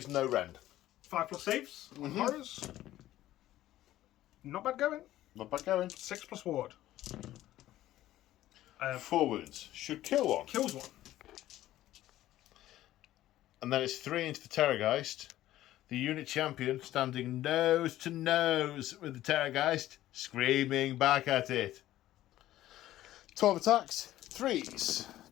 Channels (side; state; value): right; quieter; 14.3 dB